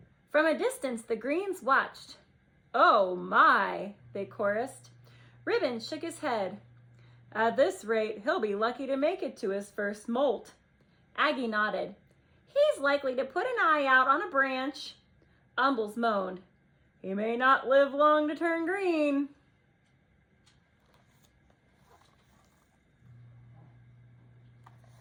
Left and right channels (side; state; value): both; identical; correlation 1.00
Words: From a distance, the greens watched. "Oh my," they chorused. Ribbon shook his head. "At this rate, he'll be lucky to make it to his first molt." Aggie nodded. He's likely to put an eye out on a branch. Umbles moaned. He may not live long to turn green.